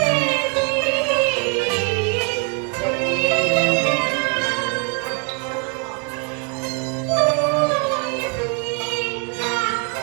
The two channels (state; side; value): quieter; left; 38.0 dB